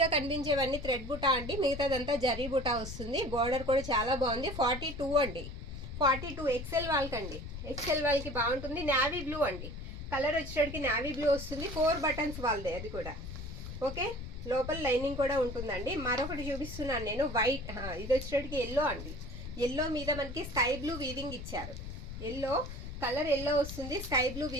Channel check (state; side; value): noise; left; rumble, 9 dB below the sound